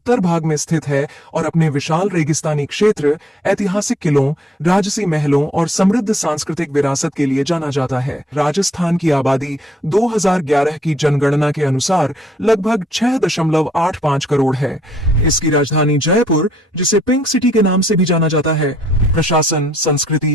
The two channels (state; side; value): normal; both; correlation 0.68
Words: भाग में स्थित है और अपने विशाल रेगिस्तानी क्षेत्र, ऐतिहासिक किलों, राजसी महलों और समृद्ध सांस्कृतिक विरासत के लिए जाना जाता है। राजस्थान की आबादी 2011 की जनगणना के अनुसार लगभग 6.85 करोड़ है। इसकी राजधानी जयपुर, जिसे पिंक सिटी के नाम से भी जाना जाता है, प्रशासन,